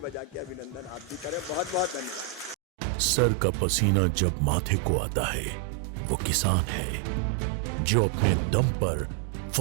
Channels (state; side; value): drops out; left; at 2.6 s